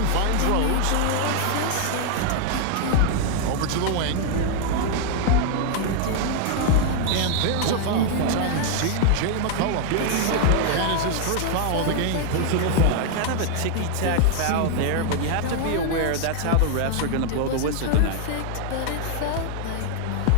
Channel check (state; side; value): different; both; correlation 0.00